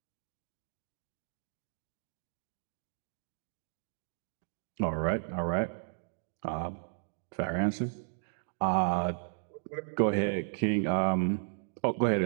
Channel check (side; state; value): left; silent; digital silence